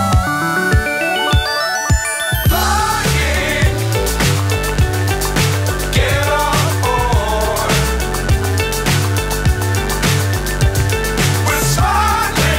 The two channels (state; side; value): identical; both; correlation 1.00